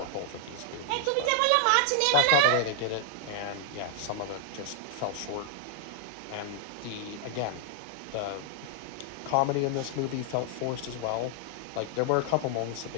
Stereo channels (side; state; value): both; different; correlation -0.01